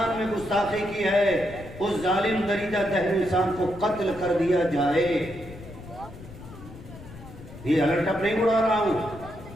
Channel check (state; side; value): noise; left; rumble, 15 dB below the sound